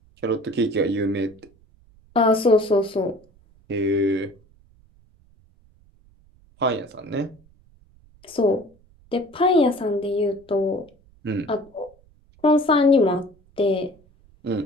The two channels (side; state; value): right; noise; rumble, 30 dB below the sound